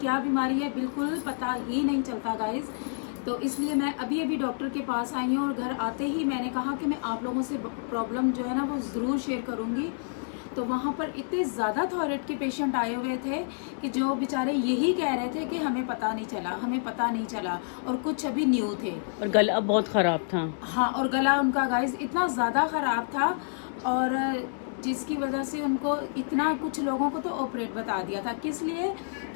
बीमारी है बिल्कुल पता ही नहीं चलता गाइस। तो इसलिए मैं अभी अभी डॉक्टर के पास आई हूं और घर आते ही मैंने कहा कि मैं आप लोगों से प्रॉब्लम जो है ना वो ज़रूर शेयर करूँगी। तो वहाँ पर इतने ज़्यादा थायराइड के पेशेंट आए हुए थे कि जो बेचारे यही कह रहे थे कि हमें पता नहीं चला, हमें पता नहीं चला। और कुछ अभी न्यू थे और गला बहुत खराब था। हाँ, और गला उनका गाइस इतना ज़्यादा ख़राब था और जिसकी वजह से उनको इतना कुछ लोगों को तो ऑपरेट बता दिया था। किस लिए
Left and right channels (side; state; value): right; silent; digital silence